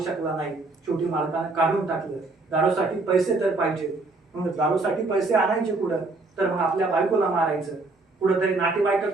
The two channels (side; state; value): left; quieter; 3.4 dB